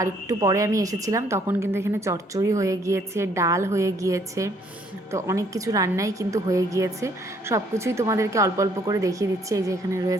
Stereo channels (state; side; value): normal; both; correlation 0.65